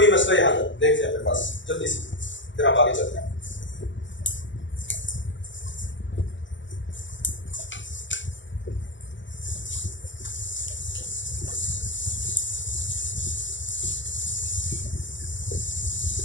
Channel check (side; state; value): right; late; 0.54 ms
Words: मसला यहाँ तक देखते हैं अपने पास जल्दी से, फिर हम आगे चलते हैं।